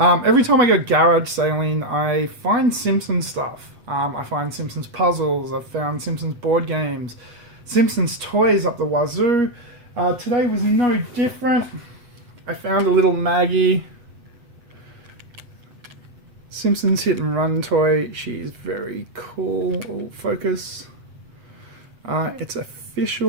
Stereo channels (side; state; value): left; late; 8.3 ms